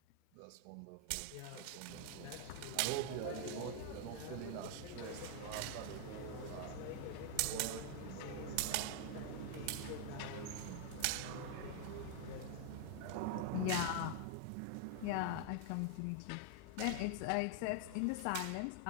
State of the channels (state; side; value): different; both; correlation 0.00